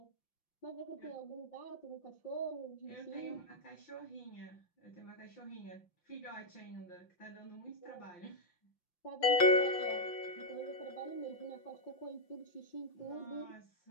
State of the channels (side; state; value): right; late; 5.7 ms